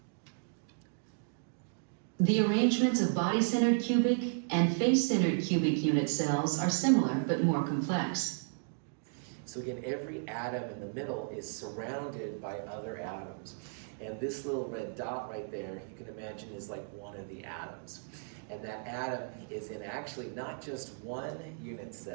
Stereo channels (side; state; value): left; silent; digital silence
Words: The arrangements of body-centered cubic and face-centered cubic unit cells are similar but more complex. So again, every atom in the middle is surrounded by other atoms. And this little red dot right there, you can imagine is like one of the atoms. And that atom is in actually not just one unit